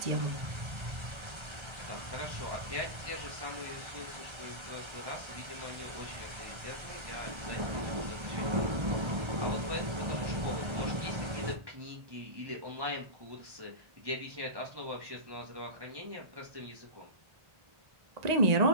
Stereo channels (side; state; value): left; late; 1.3 ms